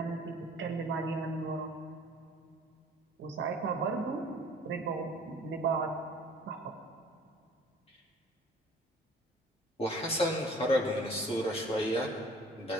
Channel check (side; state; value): both; normal; correlation 0.50